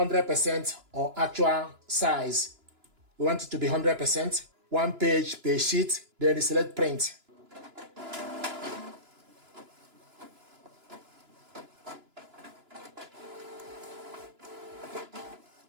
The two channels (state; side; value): late; left; 2.9 ms